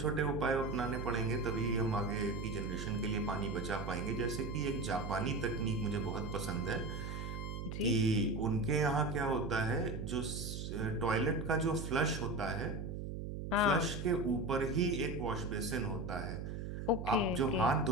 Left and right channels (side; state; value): right; noise; hum, 5 dB below the sound